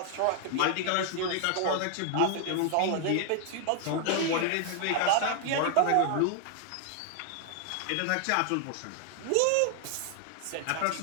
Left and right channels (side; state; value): both; different; correlation 0.00